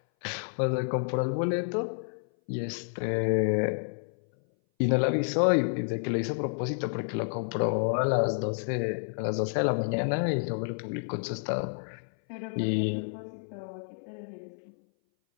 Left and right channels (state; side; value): silent; right; 58 dB below the other